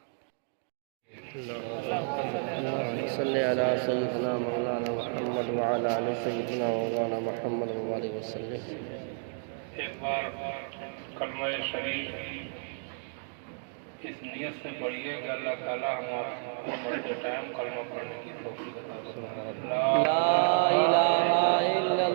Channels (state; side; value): silent; left; 57 dB below the other